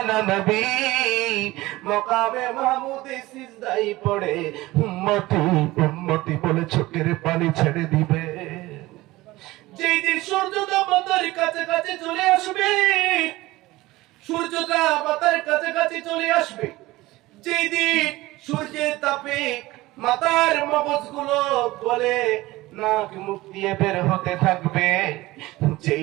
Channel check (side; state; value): left; quieter; 18.9 dB